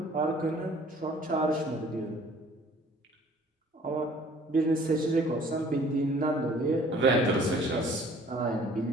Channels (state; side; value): normal; both; correlation 0.54